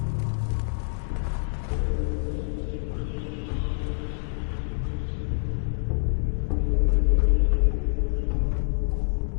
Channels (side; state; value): right; silent; digital silence